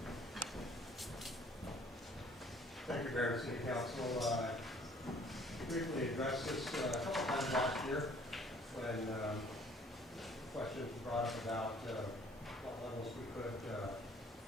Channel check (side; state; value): both; normal; correlation 0.57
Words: Thank you, Mayor and City Council. Briefly addressed this a couple times last year when questions were brought up about what levels we could